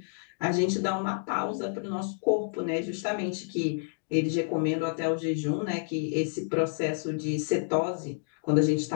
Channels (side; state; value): right; silent; digital silence